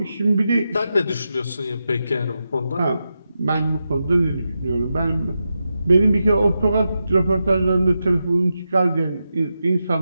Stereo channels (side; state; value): both; inverted; correlation -0.89